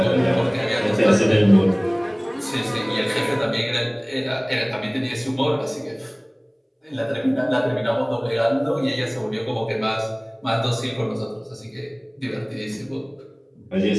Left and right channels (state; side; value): identical; both; correlation 1.00